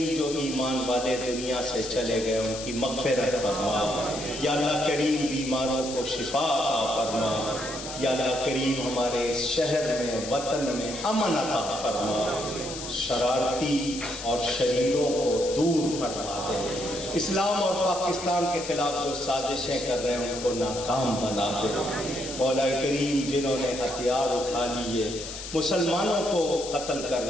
جو ایمان والے دنیا سے چلے گئے ان کی مغفرت فرما، یا اللہ کریم بیماروں کو شفا عطا فرما، یا اللہ کریم ہمارے اس شہر میں وطن میں امن عطا فرما، شرارتی اور شریروں کو دور فرما دے، اسلام اور پاکستان کے خلاف جو سازشیں کر رہے ہیں ان کو ناکام بنا دے، مولا کریم جنہوں نے ہتھیار اٹھا لیے مسلمانوں کو قتل کر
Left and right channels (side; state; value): left; noise; hiss, 9 dB below the sound